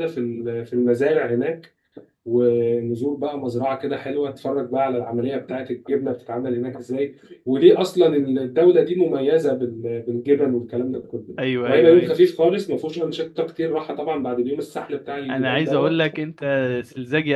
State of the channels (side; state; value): both; identical; correlation 1.00